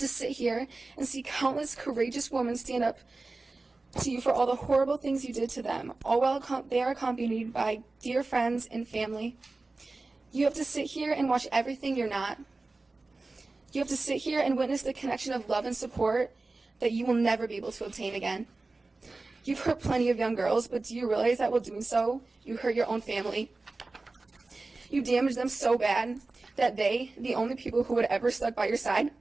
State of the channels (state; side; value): quieter; left; 3.4 dB